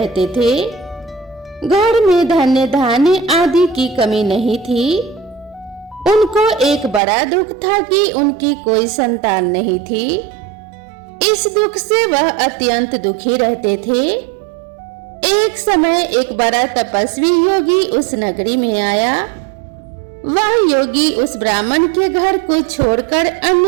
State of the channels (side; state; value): left; drops out; at 7.0 s